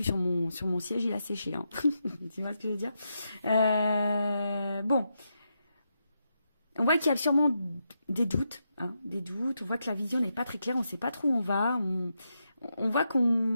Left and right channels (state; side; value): inverted; both; correlation -0.84